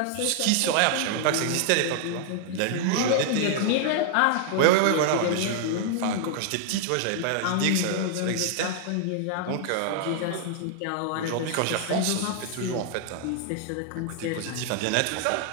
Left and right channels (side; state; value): both; different; correlation 0.00